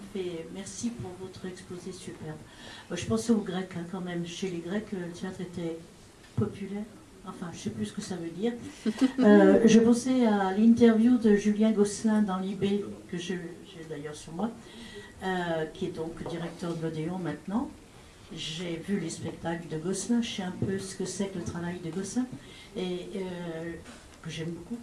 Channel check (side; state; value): both; identical; correlation 1.00